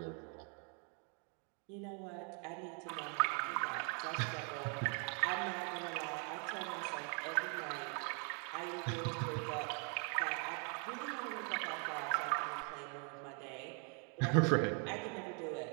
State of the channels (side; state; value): left; quieter; 38.4 dB